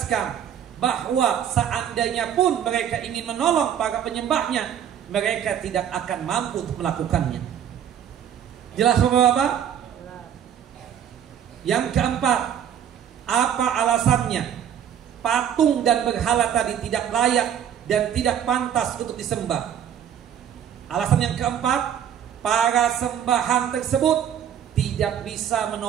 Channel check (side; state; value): left; quieter; 9.3 dB